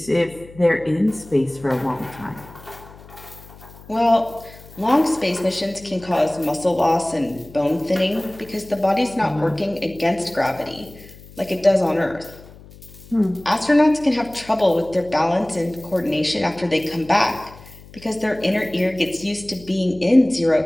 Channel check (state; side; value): noise; left; hum, 20 dB below the sound